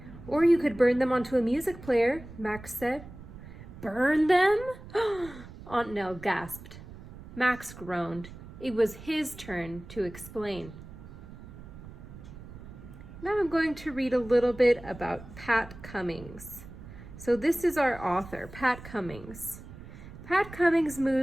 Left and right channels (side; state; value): right; noise; rumble, 15 dB below the sound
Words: Or you could burn them onto a music player, Max said. Burn them? Aunt Nell gasped. Max groaned. It was his turn to explain. Now I'm going to read a little bit about Pat Cummings. So this is our author, Pat Cummings. Pat Cummings